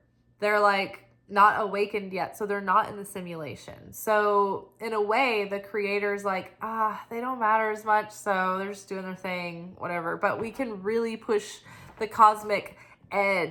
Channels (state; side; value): identical; both; correlation 1.00